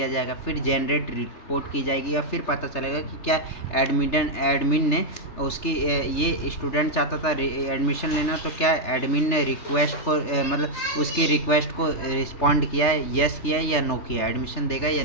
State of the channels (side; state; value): right; late; 3.3 ms